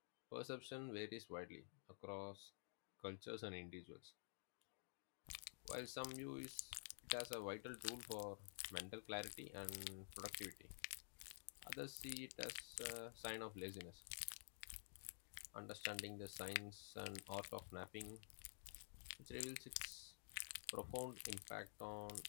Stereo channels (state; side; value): silent; right; digital silence